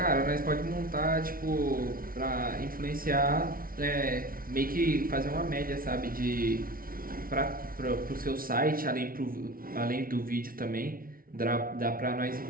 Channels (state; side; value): late; left; 0.42 ms